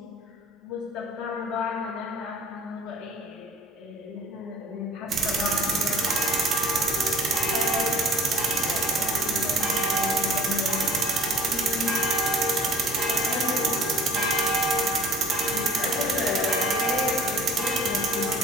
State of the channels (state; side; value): normal; both; correlation 0.49